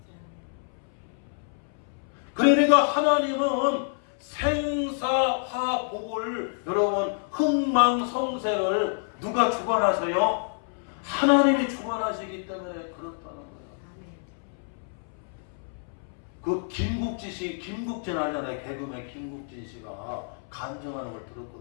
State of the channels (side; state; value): right; silent; 59 dB below the other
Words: 그러니까 하나님은 생사화복을 여러분 흥망성쇠를 누가 주관하세요? 하나님이 주관하시기 때문에 그렇다는 거예요. 그 김국진 알잖아요. 개그맨 김국진 씨가 간증하는 걸